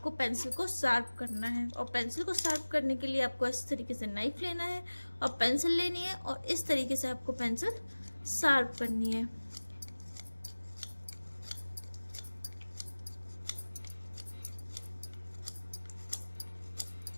पेंसिल को शार्प करना है, और पेंसिल को शार्प करने के लिए आपको इस तरीके से नाइफ लेना है और पेंसिल लेनी है, और इस तरीके से आपको पेंसिल शार्प करनी है।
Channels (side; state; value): both; inverted; correlation -1.00